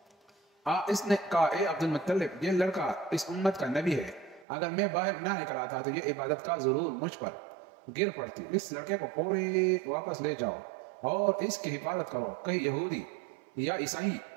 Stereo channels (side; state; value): left; drops out; at 4.5 s